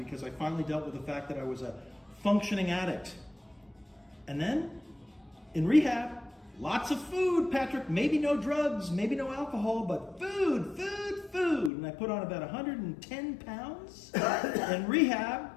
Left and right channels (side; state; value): right; drops out; at 11.7 s